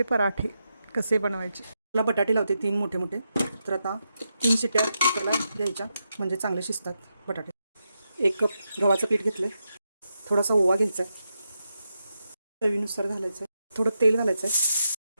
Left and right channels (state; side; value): inverted; both; correlation -0.86